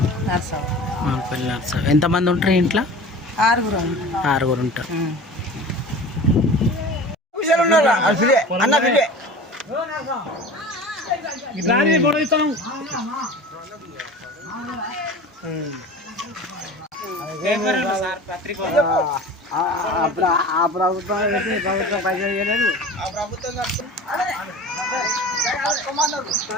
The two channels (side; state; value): both; normal; correlation 0.37